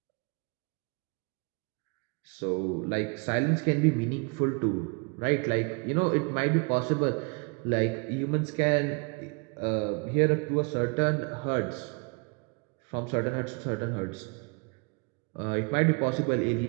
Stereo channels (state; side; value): quieter; left; 33.5 dB